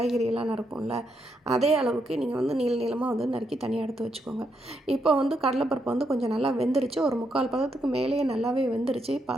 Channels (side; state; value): both; normal; correlation 0.79